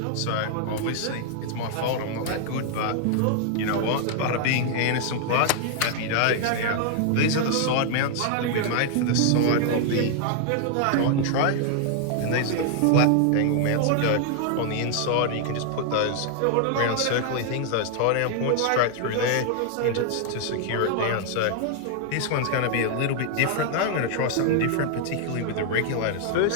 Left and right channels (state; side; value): different; both; correlation 0.00